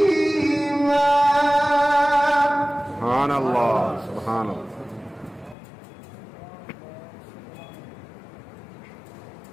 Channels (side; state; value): right; drops out; at 5.6 s